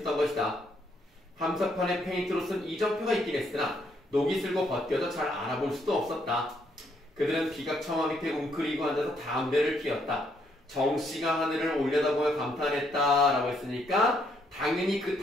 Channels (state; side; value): normal; both; correlation 0.72